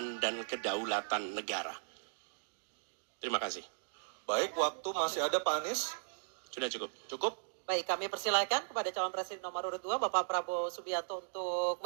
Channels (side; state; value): left; silent; digital silence